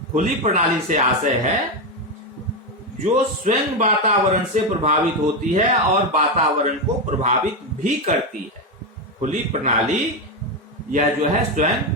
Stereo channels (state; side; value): normal; both; correlation 0.10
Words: खुली प्रणाली से आशय है जो स्वयं वातावरण से प्रभावित होती है और वातावरण को प्रभावित भी करती है। खुली प्रणाली यह जो है स्वयं